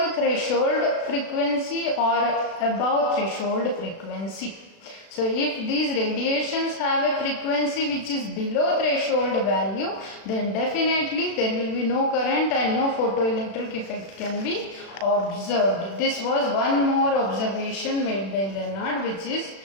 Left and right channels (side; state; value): right; late; 36 ms